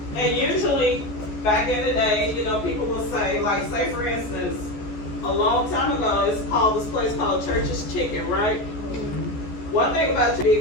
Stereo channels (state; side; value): late; right; 14 ms